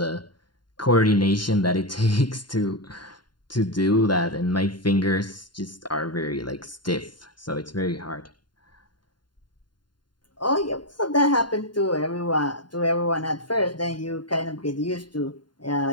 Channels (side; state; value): right; late; 0.71 ms